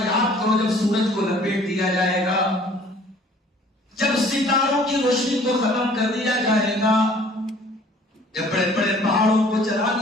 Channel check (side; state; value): both; normal; correlation 0.54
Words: کرو جب سورج کو لپیٹ دیا جائے گا، جب ستاروں کی روشنی کو ختم کر دیا جائے گا، جب بڑے بڑے پہاڑوں کو چلا